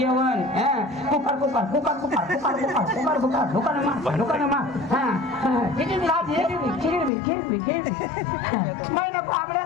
कुकर महिने बाबड्या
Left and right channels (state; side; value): drops out; right; at 7.1 s